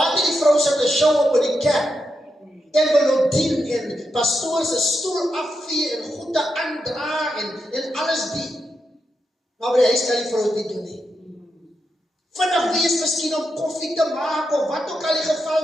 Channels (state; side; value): normal; both; correlation 0.85